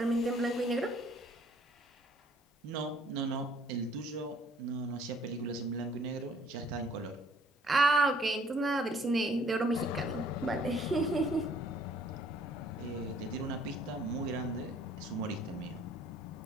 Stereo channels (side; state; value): both; normal; correlation 0.59